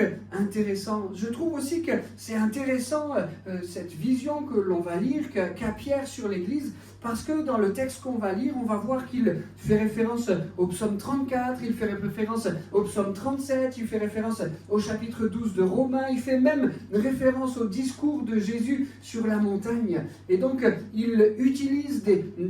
intéressant. Je trouve aussi que c'est intéressant cette vision que l'on va lire qu'a Pierre sur l'Église, parce que dans le texte qu'on va lire, on va voir qu'il fait référence au psaume 34, il fait référence au psaume 37, il fait référence au chapitre 12 de Romains, il fait même référence au discours de Jésus sur la montagne. Et donc, il utilise des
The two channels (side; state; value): both; identical; correlation 1.00